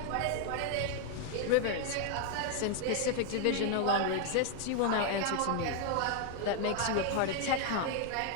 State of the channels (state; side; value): different; both; correlation 0.00